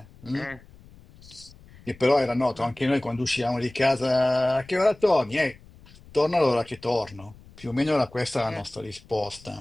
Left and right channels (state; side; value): noise; left; rumble, 23 dB below the sound